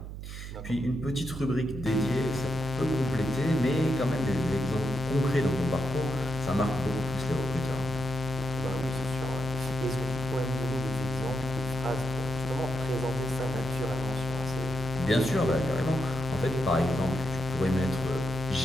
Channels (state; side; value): noise; right; hum, 9 dB below the sound